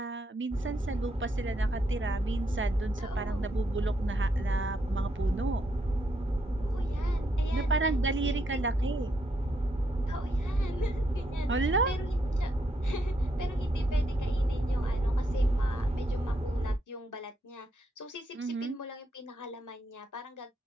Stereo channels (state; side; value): normal; both; correlation 0.77